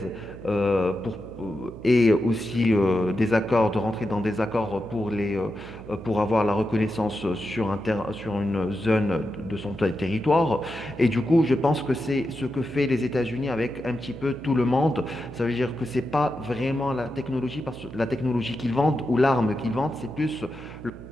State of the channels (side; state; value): right; noise; hum, 14 dB below the sound